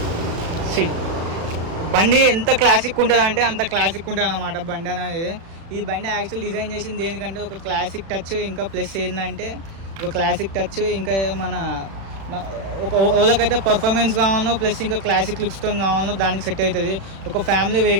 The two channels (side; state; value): left; late; 36 ms